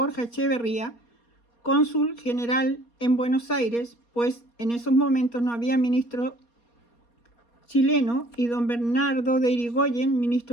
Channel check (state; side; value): late; right; 4.2 ms